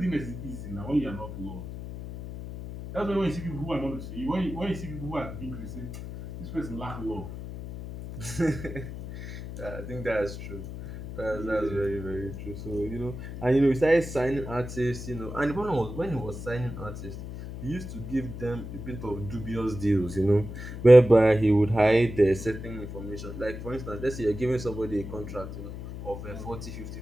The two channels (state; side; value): noise; left; hum, 9 dB below the sound